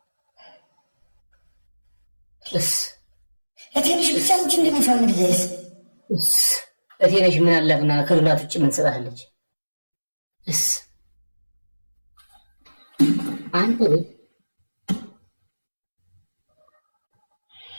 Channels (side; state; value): both; inverted; correlation -1.00